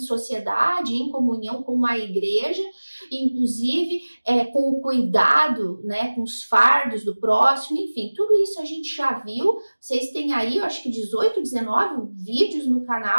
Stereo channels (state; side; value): inverted; both; correlation -1.00